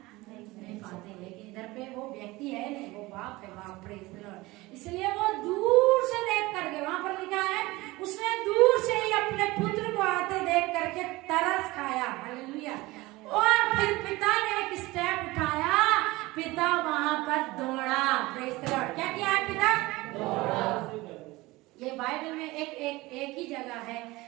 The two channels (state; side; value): quieter; left; 20.7 dB